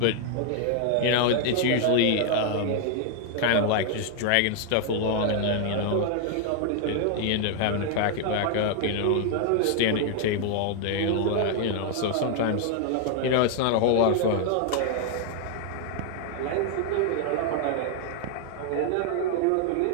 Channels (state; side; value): different; both; correlation 0.00